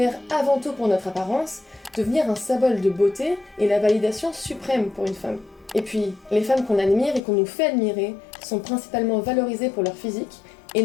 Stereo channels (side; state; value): right; drops out; at 7.2 s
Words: avant tout pour notre apparence, devenir un symbole de beauté est la validation suprême pour une femme. Et puis, les femmes qu'on admire et qu'on nous fait admirer sont principalement valorisées pour leur physique et